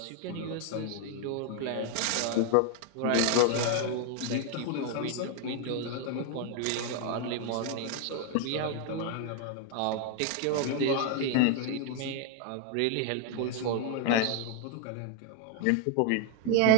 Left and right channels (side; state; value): both; different; correlation 0.00